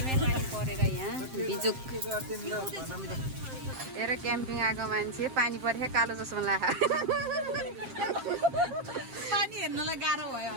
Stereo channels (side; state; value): left; late; 7.6 ms